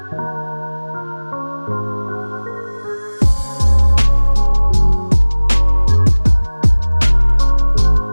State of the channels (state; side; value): inverted; both; correlation -1.00